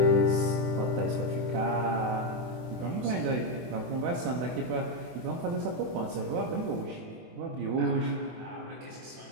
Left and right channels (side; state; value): left; late; 24 ms